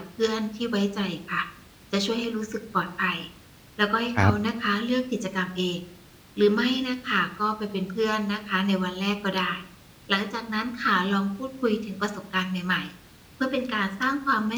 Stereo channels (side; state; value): both; identical; correlation 1.00